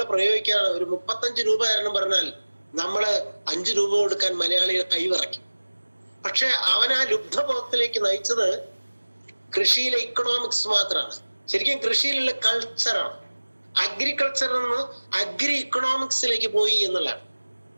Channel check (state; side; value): inverted; both; correlation -1.00